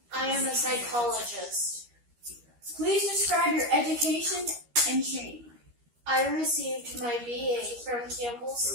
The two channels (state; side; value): late; left; 13 ms